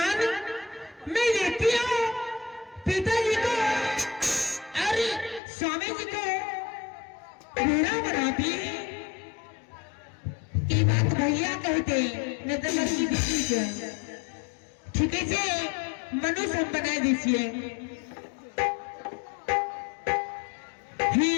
मैं देखती हूँ पिताजी को अरे स्वामी जी को बूढ़ा बनाती ये बात भैया कहते नहीं तो लड़की दिखी से ठीक है जी मनुष्य बना दीजिए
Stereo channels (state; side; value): drops out; right; at 5.4 s